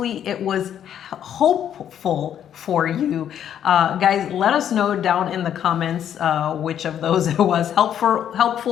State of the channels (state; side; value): quieter; right; 9.7 dB